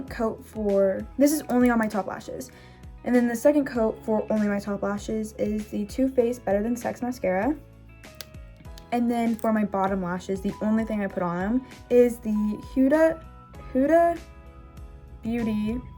coat for, this is only on my top lashes, and then the second coat for only my top lashes is the Too Faced Better Than Sex mascara. And then for my bottom lashes, the only thing I put on them is the Huda Beauty,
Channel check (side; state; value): both; identical; correlation 1.00